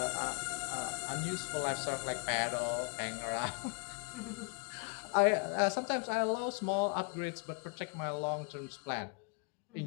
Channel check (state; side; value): quieter; right; 37.4 dB